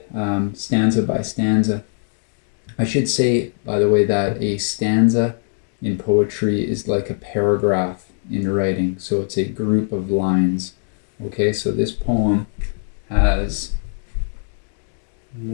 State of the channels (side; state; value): right; silent; digital silence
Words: stanza by stanza. I should say, by the way, that a stanza in poetry is like a paragraph in writing, so it's a group of lines. Okay, so this poem has